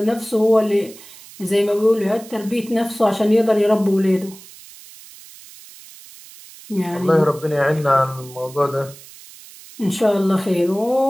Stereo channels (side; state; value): right; noise; hiss, 20 dB below the sound